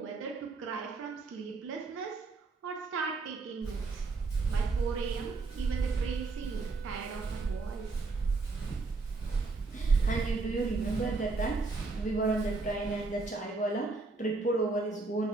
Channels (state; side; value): quieter; left; 3.9 dB